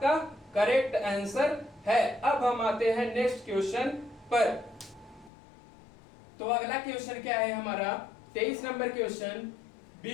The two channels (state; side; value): drops out; right; at 5.3 s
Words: करेक्ट आंसर है। अब हम आते हैं नेक्स्ट क्वेश्चन पर। तो अगला क्वेश्चन क्या है हमारा, 23 नंबर क्वेश्चन,